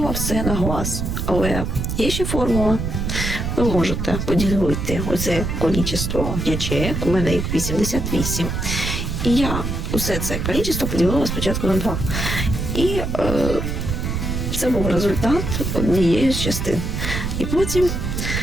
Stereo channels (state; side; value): noise; right; rumble, 2 dB below the sound